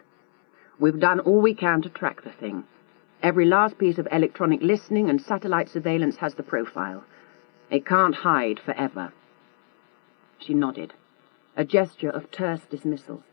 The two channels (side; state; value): right; silent; 63 dB below the other